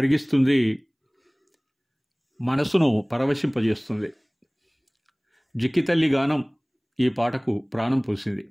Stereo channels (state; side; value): identical; both; correlation 1.00